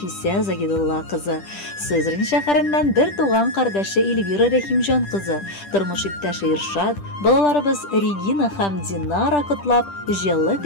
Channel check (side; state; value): right; late; 10 ms